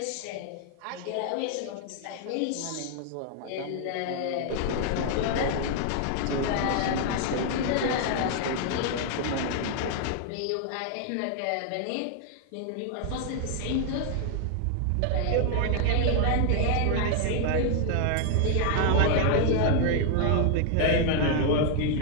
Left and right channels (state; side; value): different; both; correlation 0.00